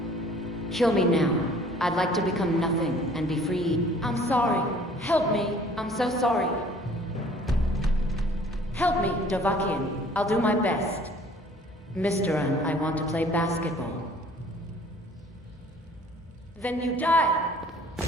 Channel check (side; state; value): both; normal; correlation 0.54